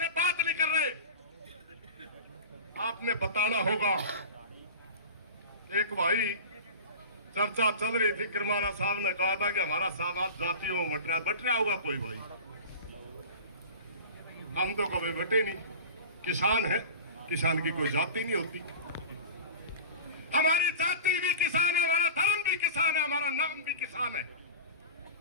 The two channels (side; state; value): both; inverted; correlation -0.33